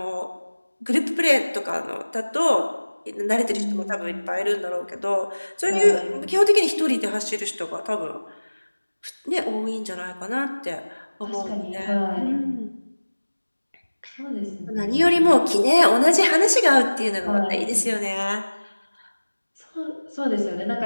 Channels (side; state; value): both; inverted; correlation -1.00